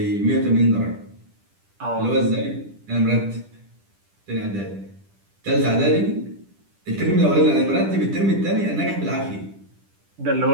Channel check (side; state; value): left; late; 10 ms